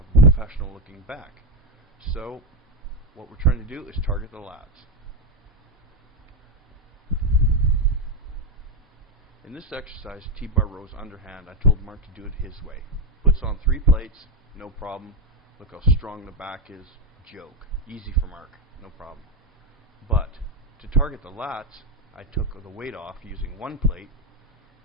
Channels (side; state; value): both; normal; correlation 0.08